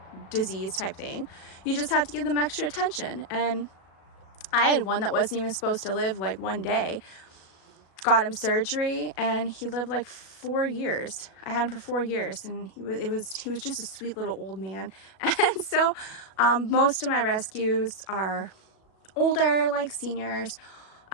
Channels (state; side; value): late; right; 37 ms